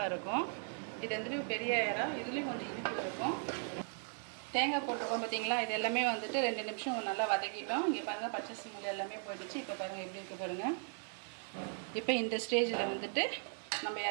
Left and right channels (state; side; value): silent; left; 53 dB below the other